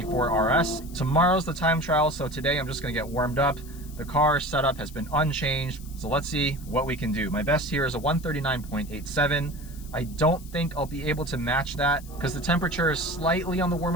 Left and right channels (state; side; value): noise; left; hiss, 20 dB below the sound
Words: RS. Tomorrow's the time trial, so today I'm just gonna get warmed up. The car setup has been unchanged, so let's see what we can do. My best here is a 139.87. I don't think I'll be able to match that because the temperature is slightly on the